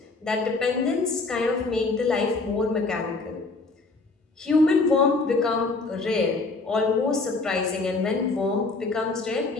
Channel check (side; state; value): right; quieter; 3.6 dB